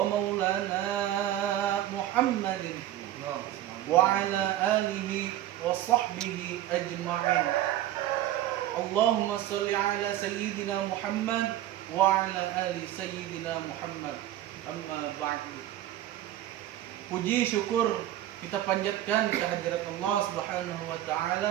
maulana Muhammadin wa ala alihi wa sahbihi ajma'in. Allahumma salli ala sayyidina Muhammad wa ala ali sayyidina Muhammad. Amma ba'du. Puji syukur kita panjatkan kehadirat Allah Subhanahu wa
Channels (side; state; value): left; quieter; 13.3 dB